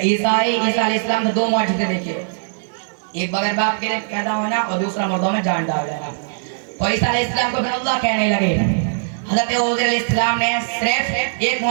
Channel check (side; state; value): left; silent; digital silence